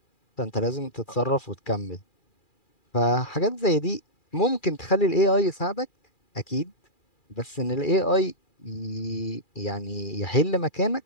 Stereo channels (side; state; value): right; late; 2.4 ms